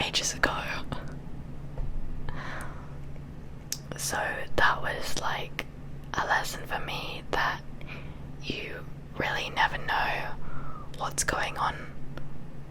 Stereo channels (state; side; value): identical; both; correlation 1.00